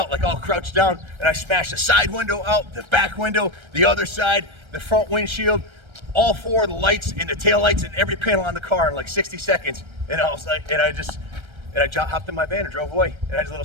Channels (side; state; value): left; late; 1.3 ms